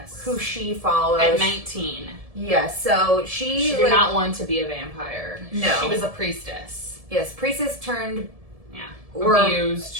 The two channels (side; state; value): left; late; 1.7 ms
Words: who she follows. At 19. Yes, so she did not want to be a vampire. No. She was a priestess. Yes, priestess turned... abused.